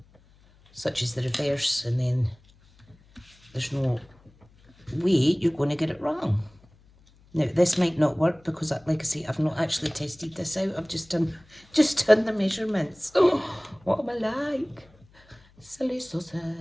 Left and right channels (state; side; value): noise; left; hum, 29 dB below the sound